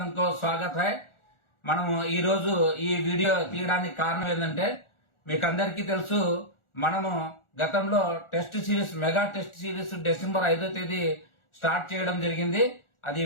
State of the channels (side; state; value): right; late; 1.4 ms